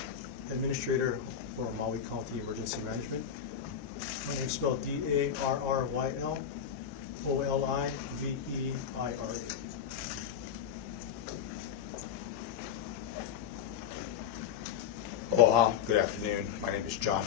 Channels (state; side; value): quieter; right; 8.3 dB